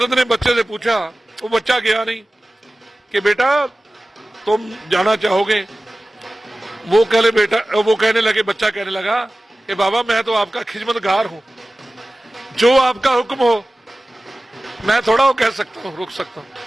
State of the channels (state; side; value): normal; both; correlation 0.96